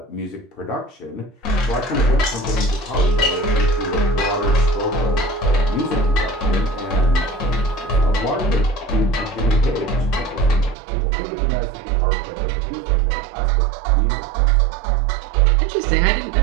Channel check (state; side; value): drops out; left; at 10.8 s